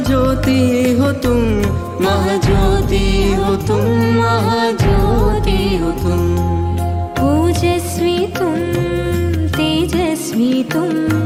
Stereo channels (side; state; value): both; identical; correlation 1.00